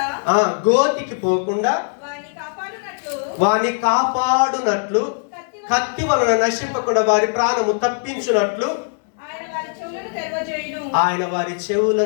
గోతికి పోకుండా వాని కాపాడునట్లు, కత్తి వలన నశింపకుండా వారి ప్రాణము తప్పించునట్లు ఆయన వారి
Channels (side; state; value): right; silent; 60 dB below the other